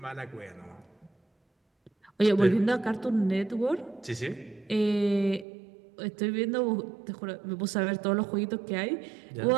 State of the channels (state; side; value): drops out; left; at 5.5 s